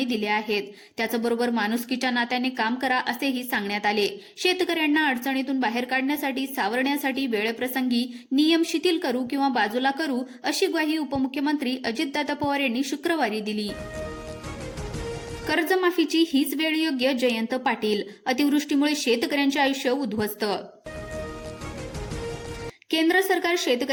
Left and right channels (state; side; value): identical; both; correlation 1.00